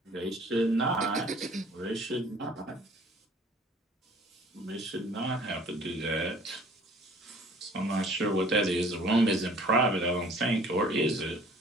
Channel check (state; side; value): normal; both; correlation 0.52